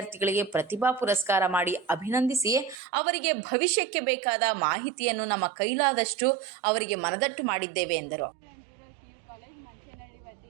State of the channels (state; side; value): drops out; left; at 2.8 s